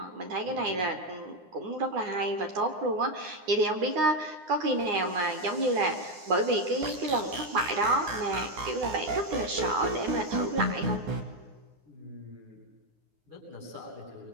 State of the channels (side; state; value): left; late; 9.8 ms